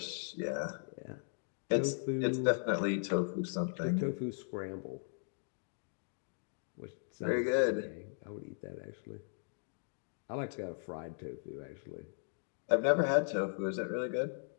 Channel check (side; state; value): right; silent; digital silence